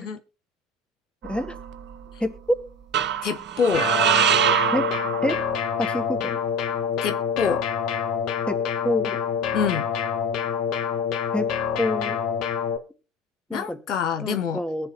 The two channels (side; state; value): both; normal; correlation 0.32